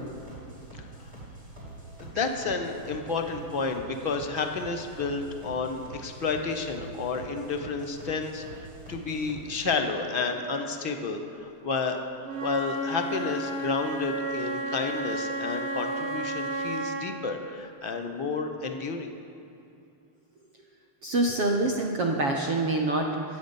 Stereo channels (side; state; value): left; late; 7.3 ms